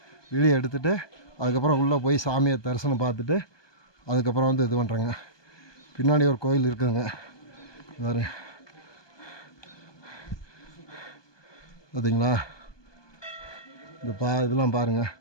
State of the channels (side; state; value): right; late; 1.2 ms